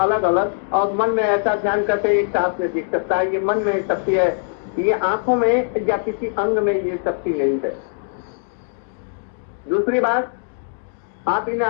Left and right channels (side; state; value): right; silent; 65 dB below the other